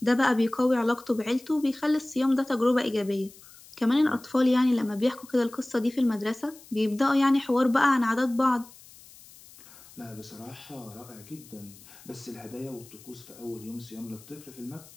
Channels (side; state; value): left; noise; hiss, 22 dB below the sound